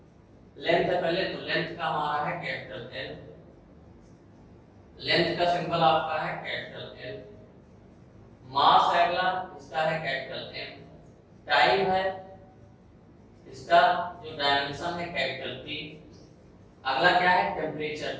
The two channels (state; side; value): identical; both; correlation 1.00